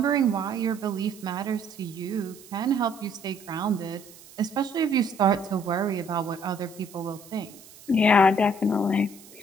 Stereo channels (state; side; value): noise; right; hiss, 21 dB below the sound